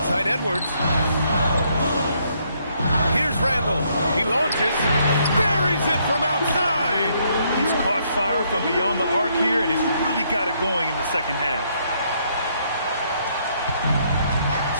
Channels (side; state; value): both; inverted; correlation -0.71